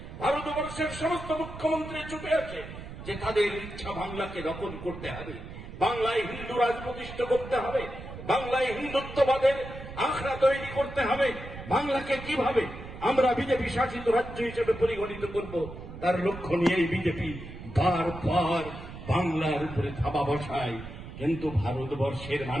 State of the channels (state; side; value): noise; right; rumble, 12 dB below the sound